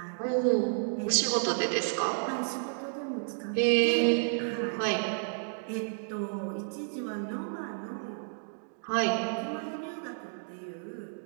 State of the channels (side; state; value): left; silent; digital silence